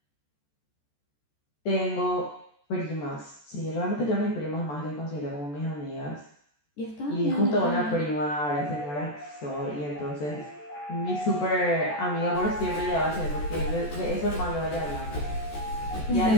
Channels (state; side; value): late; right; 14 ms